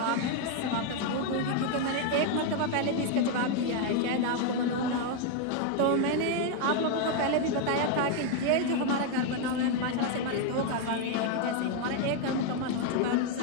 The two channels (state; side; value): different; both; correlation 0.01